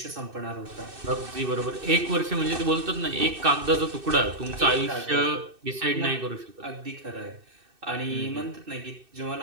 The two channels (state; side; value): late; left; 2.6 ms